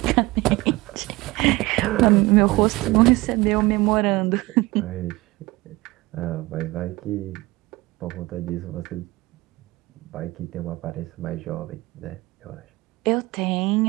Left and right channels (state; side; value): quieter; left; 21.0 dB